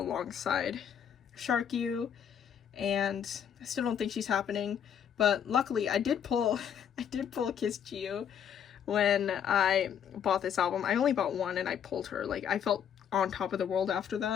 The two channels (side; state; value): right; quieter; 8.5 dB